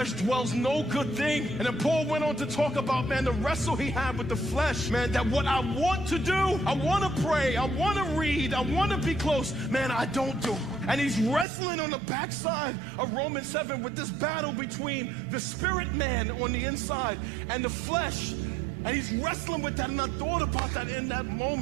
dwells no good thing. And then Paul went on to talk about, man, the wrestle he had with the flesh. Man, that what I want to do, I want to pray, I want to read, I want to be close. Man, I don't do. And he's wrestling on the backside of Romans 7 with this battle between the spirit man on the inside and the flesh. And he's wrestling with that, and I thought about that in that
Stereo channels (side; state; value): left; drops out; at 11.5 s